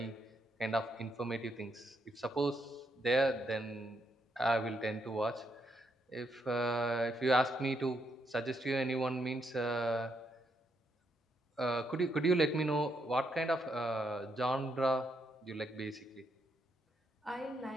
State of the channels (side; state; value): both; normal; correlation 0.77